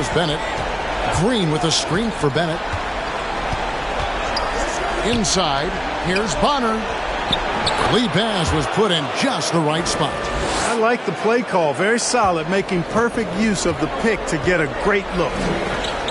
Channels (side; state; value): both; identical; correlation 1.00